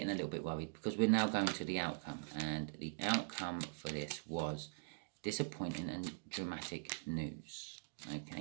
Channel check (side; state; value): left; silent; digital silence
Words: a little bit worried, because we're now going to the outcome. And the outcome for this was disappointing and dramatic news.